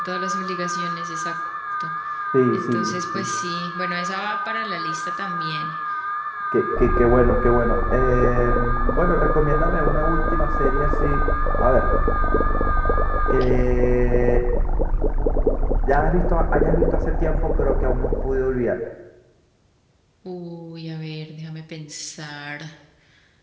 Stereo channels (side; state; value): both; identical; correlation 1.00